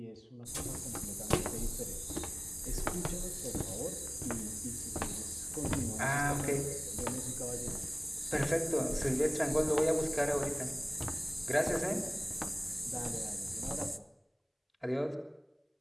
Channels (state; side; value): identical; both; correlation 1.00